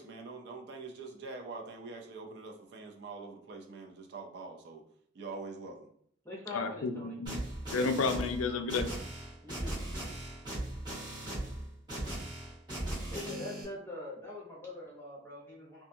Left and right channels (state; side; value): normal; both; correlation 0.32